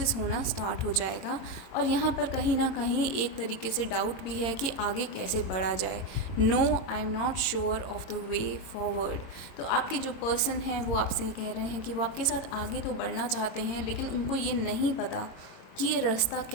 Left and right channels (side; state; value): right; late; 22 ms